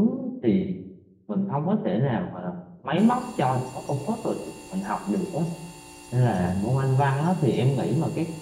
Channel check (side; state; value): both; identical; correlation 1.00